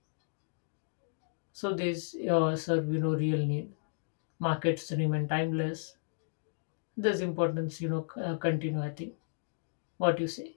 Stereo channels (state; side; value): silent; right; digital silence